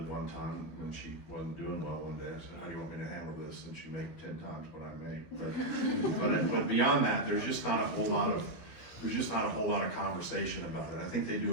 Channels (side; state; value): right; late; 12 ms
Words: one time when she wasn't doing well one day. I said, "How do you want me to handle this since you make 10 times what I make?" But beyond that, there's just not a whole lot of conversation about it. I think they do